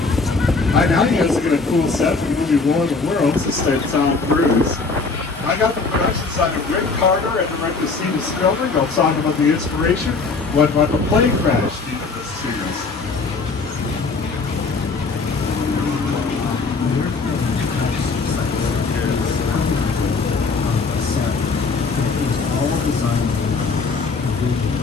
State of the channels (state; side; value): quieter; right; 4.2 dB